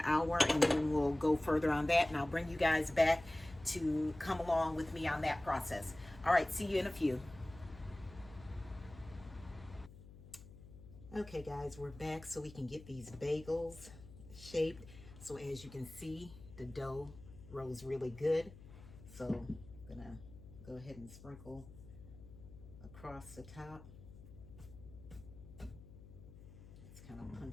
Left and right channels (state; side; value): noise; left; hum, 18 dB below the sound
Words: hour, and then we'll go further on that, and I'll bring you guys back to come along with me on that process. All right, see you in a few. Okay guys, we're back so we can get these bagels shaped. So as you can see, the dough rose really good. So I'm gonna go ahead and sprinkle across the top. Let's kind of